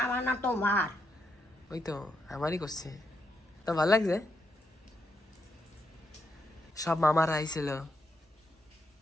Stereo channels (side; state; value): both; normal; correlation 0.81